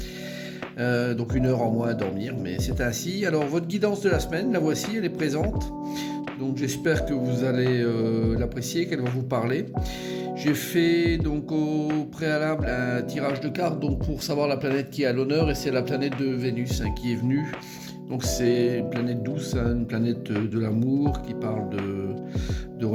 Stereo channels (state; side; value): identical; both; correlation 1.00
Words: donc une heure en moins à dormir, mais c'est ainsi. Alors votre guidance de la semaine, la voici, elle est présente, donc j'espère que vous allez l'apprécier, qu'elle va vous parler. J'ai fait donc au préalable un tirage de cartes donc pour savoir la planète qui est à l'honneur, et c'est la planète de Vénus qui est venue. Donc c'est une planète douce, une planète de l'amour qui parle de